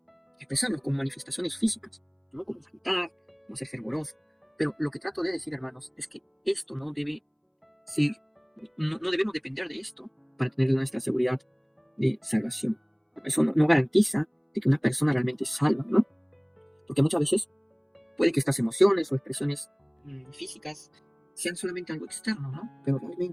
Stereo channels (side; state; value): both; identical; correlation 1.00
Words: expresarnos con manifestaciones físicas, ¿no? Como cantar, como ser fervoroso. Pero lo que trato de decir, hermanos, es que esto no debe ser, no debemos depender de esto para tener nuestra seguridad de salvación. Eso no garantiza de que una persona realmente es salva, ¿no? Porque muchas veces puede que estas emociones o expresiones físicas sean solamente algo externo, ¿no? Pero